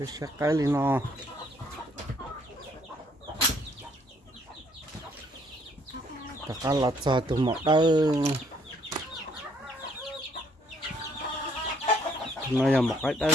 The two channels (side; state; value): both; normal; correlation 0.65